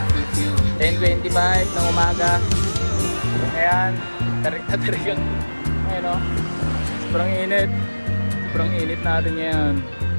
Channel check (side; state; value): both; inverted; correlation -1.00